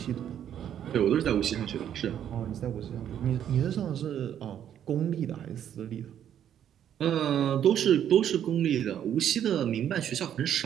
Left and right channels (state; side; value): quieter; left; 9.9 dB